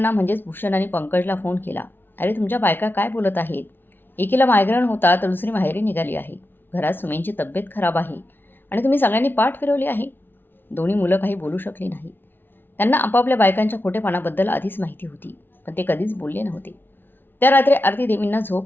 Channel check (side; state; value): right; late; 0.099 ms